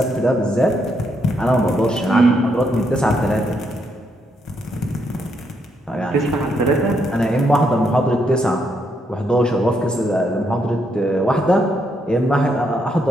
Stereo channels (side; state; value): both; normal; correlation 0.77